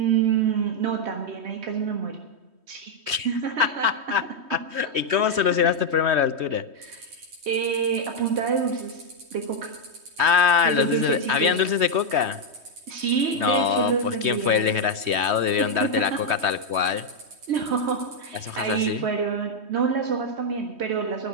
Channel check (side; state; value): left; late; 3.2 ms